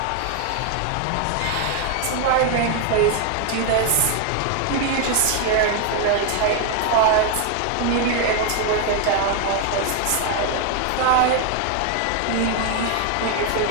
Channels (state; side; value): different; both; correlation 0.01